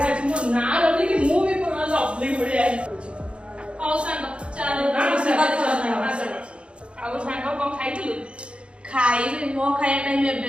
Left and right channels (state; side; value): late; left; 0.058 ms